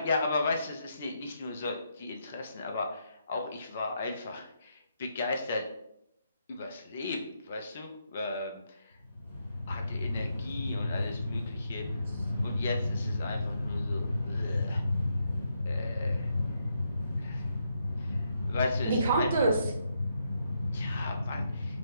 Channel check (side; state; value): both; inverted; correlation -0.80